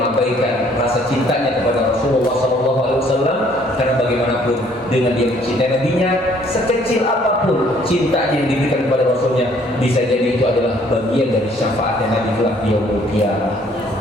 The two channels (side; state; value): both; normal; correlation 0.61